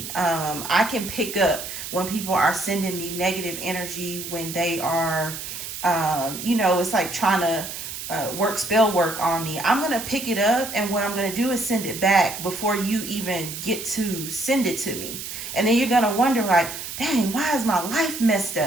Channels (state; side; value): noise; right; hiss, 8 dB below the sound